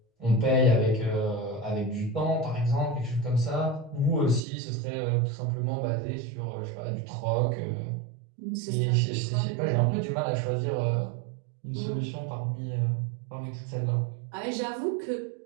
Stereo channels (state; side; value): drops out; left; at 4.4 s